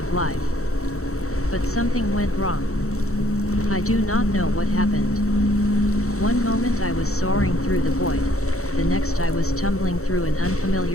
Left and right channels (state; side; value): late; right; 0.64 ms